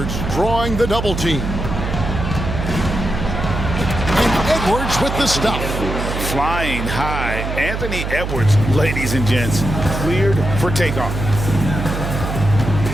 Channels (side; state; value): right; noise; hum, 4 dB below the sound